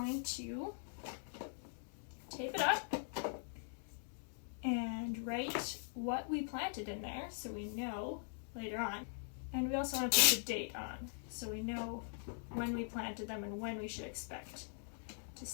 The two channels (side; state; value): right; silent; digital silence